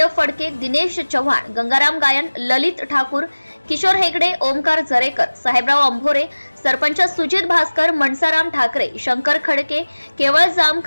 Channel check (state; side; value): inverted; both; correlation -1.00